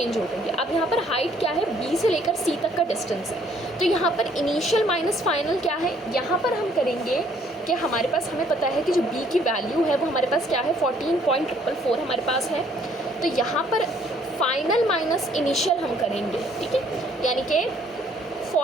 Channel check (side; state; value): both; normal; correlation 0.63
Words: हो गई है। अब यहाँ पर हाइट क्या है, B से लेकर C तक का डिस्टेंस है। तो यहाँ पर इनिशियल माइनस फाइनल क्या है, यहाँ पर हम करेंगे कि हमारे पास हमें पता है कि जो B की वैल्यू है वो हमारे पास क्या है 14.444 हमारे पास है। तो यहाँ पर फाइनल माइनस इनिशियल हम करेंगे। ठीक है, यानी कि